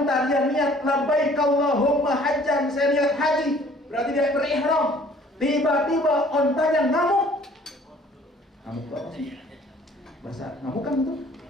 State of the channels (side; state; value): both; normal; correlation 0.55